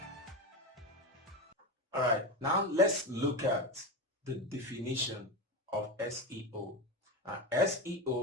Alright, now let's look at the definition of SEO.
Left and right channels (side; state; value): both; normal; correlation 0.19